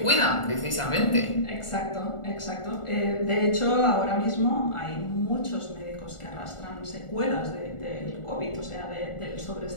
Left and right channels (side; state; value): right; late; 1.4 ms